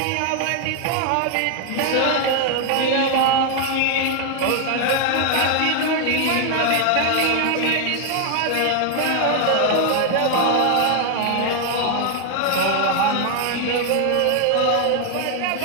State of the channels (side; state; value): both; different; correlation 0.00